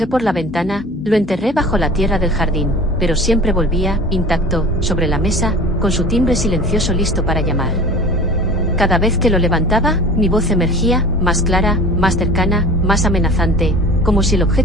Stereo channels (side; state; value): both; normal; correlation 0.41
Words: por la ventana, lo enterré bajo la tierra del jardín, pero siempre volvía, intacto, sobre la mesa, con su timbre silencioso listo para llamar. Cada vez que lo levantaba, mi voz emergía, más clara, más cercana, más amenazante, como si el